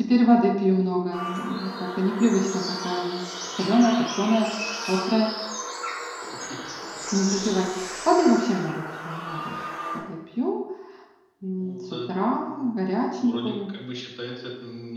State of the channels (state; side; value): identical; both; correlation 1.00